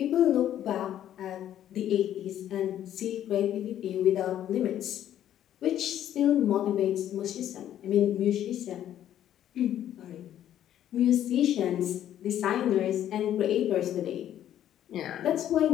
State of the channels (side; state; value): right; quieter; 11.2 dB